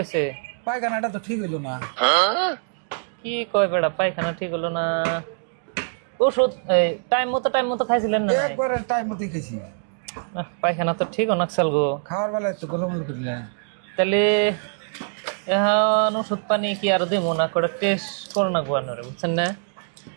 আছে? পায়খানাটা তো ঠিক হইল না। কি কয় বেড়া পায়খানা ঠিক হলো না? ওষুধ টাইম মতো খাইছিলেন না? একবারে টাইম মতোই খেছি। পায়খানা তো ঠিক অনাকসাল গো। খাওয়ার বেলায় তো গোলমল করি না। তাহলে এখন ওষুধ পানি কি আর দিব না, করে টেস্ট করে না আপনারা, বুঝছেন না?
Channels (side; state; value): left; silent; digital silence